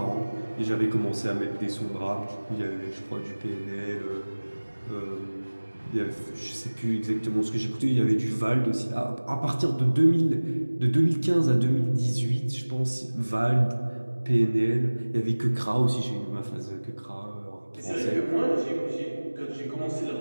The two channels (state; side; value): inverted; both; correlation -1.00